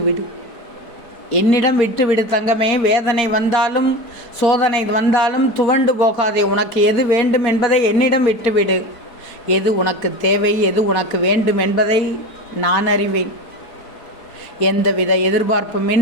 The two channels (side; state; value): right; late; 4.0 ms